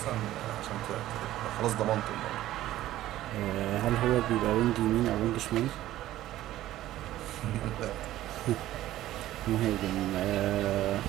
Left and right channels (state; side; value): quieter; left; 14.4 dB